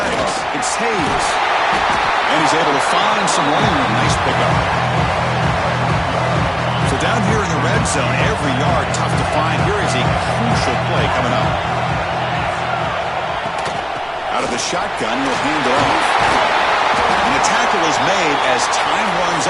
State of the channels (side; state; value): both; identical; correlation 1.00